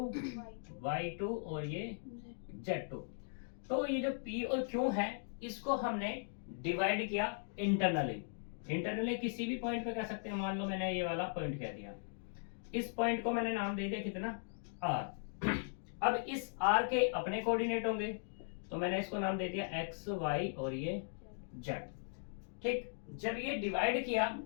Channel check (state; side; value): silent; right; digital silence